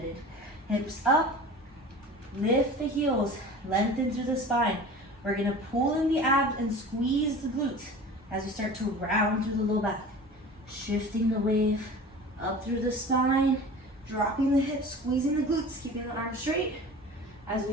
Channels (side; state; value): both; normal; correlation 0.38